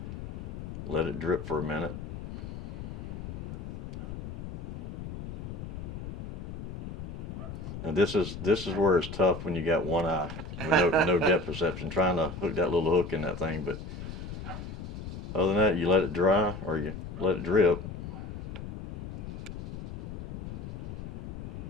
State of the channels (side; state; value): left; noise; rumble, 8 dB below the sound